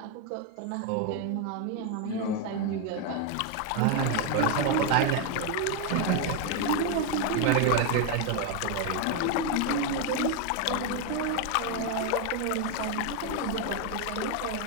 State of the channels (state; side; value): different; both; correlation 0.01